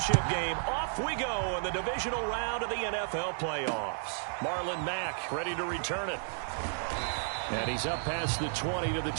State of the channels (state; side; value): silent; left; digital silence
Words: game, off we go in the divisional round of the NFL playoffs. Marlon Mack ready to return it. And he's up past the 20 to the